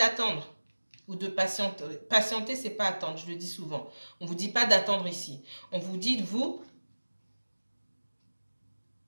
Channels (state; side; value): inverted; both; correlation -1.00